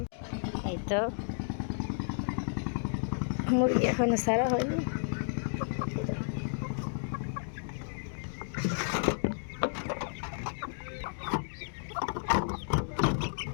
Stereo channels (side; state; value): right; silent; digital silence